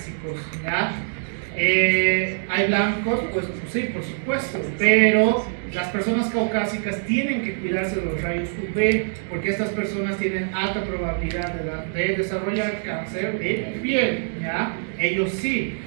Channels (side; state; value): left; silent; digital silence